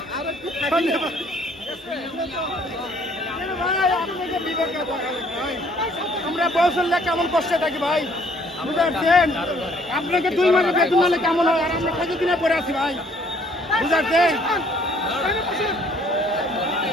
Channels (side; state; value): both; normal; correlation 0.60